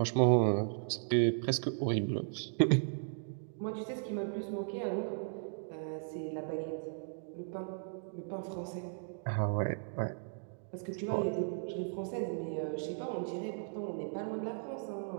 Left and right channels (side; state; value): left; silent; digital silence